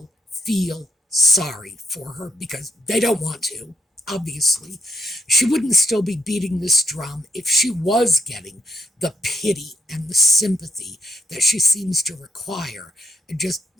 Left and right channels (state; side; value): normal; both; correlation 0.77